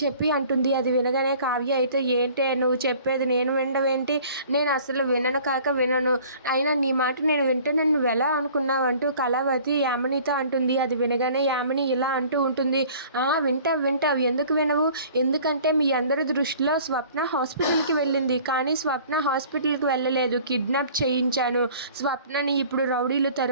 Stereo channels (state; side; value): inverted; both; correlation -0.50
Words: చెప్పి అంటుంది. అది వినగానే కావ్య అయితే ఏంటే నువ్వు చెప్పేది నేను వినడం, నేను అసలు వినను కాక వినను, అయినా నీ మాట నేను వింటానని నువ్వెలా అనుకున్నావంటూ కళావతి యామినితో అంటుంది. అది వినగానే యామిని ఇలా అంటూ ఉంటుంది. వింటావు ఎందుకు వినవు? ఎందుకంటే మీ అందరి దృష్టిలో స్వప్న హాస్పిటల్కి వెళ్ళింది, కానీ స్వప్న హాస్పిటల్కి వెళ్ళలేదు, కిడ్నాప్ చేయించాను, స్వప్నని ఇప్పుడు రౌడీలు